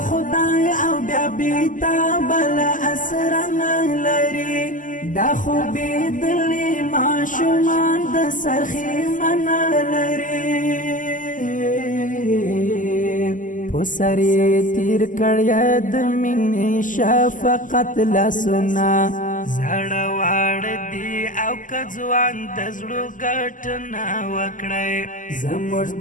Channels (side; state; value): right; late; 0.38 ms